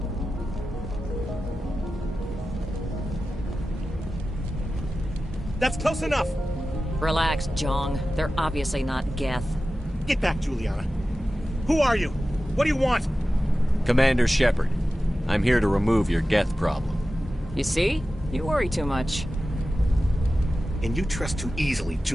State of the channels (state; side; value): normal; both; correlation 0.94